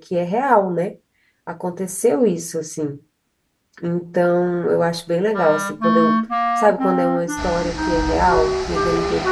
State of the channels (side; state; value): both; identical; correlation 1.00